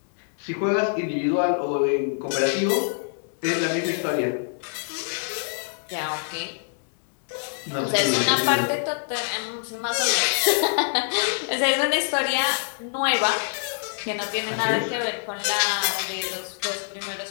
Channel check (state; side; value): silent; right; digital silence